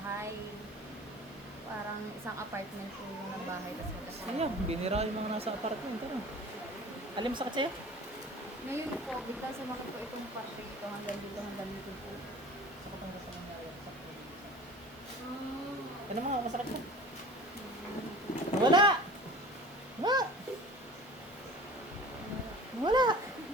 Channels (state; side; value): normal; both; correlation 0.41